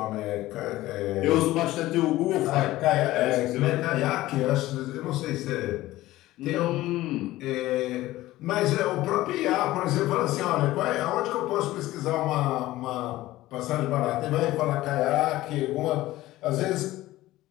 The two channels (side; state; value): right; quieter; 16.6 dB